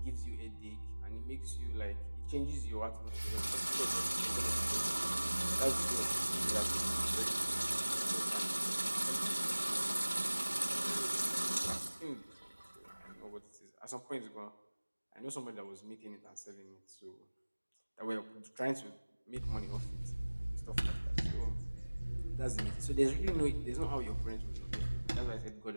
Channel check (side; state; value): both; inverted; correlation -1.00